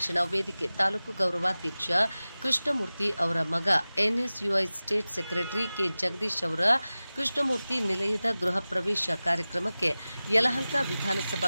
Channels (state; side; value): inverted; both; correlation -0.97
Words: ವೇದಿಕೆ ತಾಲೂಕು ಗೌರವಾಧ್ಯಕ್ಷ ಕೃಷ್ಣಮೂರ್ತಿ ಅವರ ಮಗ NSUI state secretary K Jagadish ಅವರ ಕೃಷ್ಣಮೂರ್ತಿ ನಿಲಯದ ಗೃಹ ಪ್ರವೇಶ ಕಾರ್ಯಕ್ರಮಕ್ಕೆ ಯಲಹಂಕ